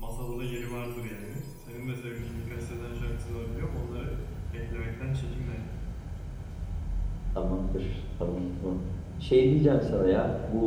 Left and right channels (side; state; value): both; identical; correlation 1.00